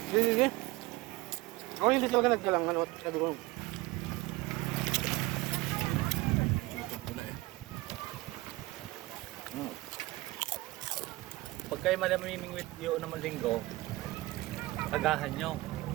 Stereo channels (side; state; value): left; quieter; 20.3 dB